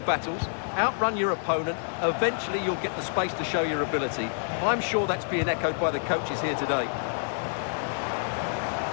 battles, outrun your opponent, eventually you'll get the space to show your ability. I'm sure that's being echoed by the coaches here today.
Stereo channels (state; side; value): silent; right; digital silence